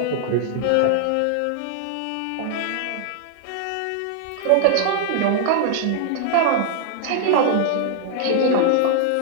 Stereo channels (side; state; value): both; different; correlation 0.00